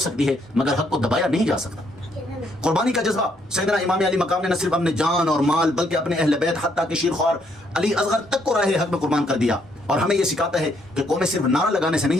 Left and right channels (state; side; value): normal; both; correlation 0.71